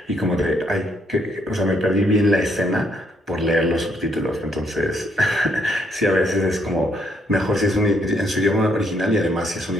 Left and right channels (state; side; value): normal; both; correlation 0.72